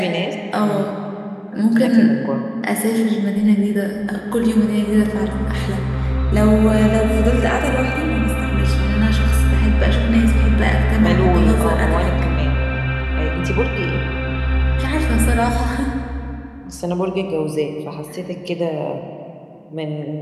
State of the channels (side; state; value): both; identical; correlation 1.00